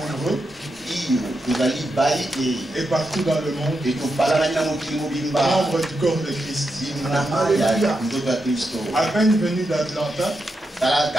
et partout dans le monde, membres du corps de Christ. À peine venu d'Atlanta,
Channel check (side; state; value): both; normal; correlation 0.86